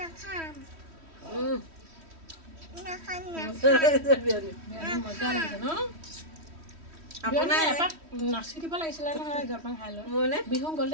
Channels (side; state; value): left; late; 3.1 ms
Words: মজা লাগিছে ন আপোনাৰ এপাক নাচি দিব লাগিছিলে নহয় জলপান খাই লৈ মোৰনে বিহু